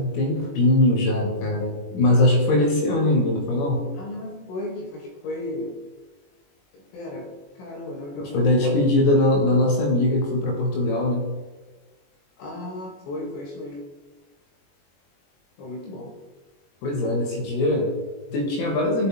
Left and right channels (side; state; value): right; late; 21 ms